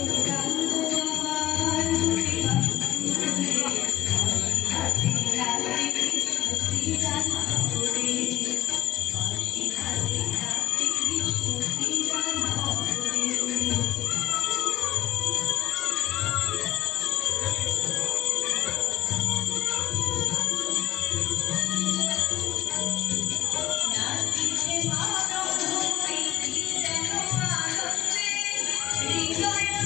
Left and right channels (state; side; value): quieter; right; 14.4 dB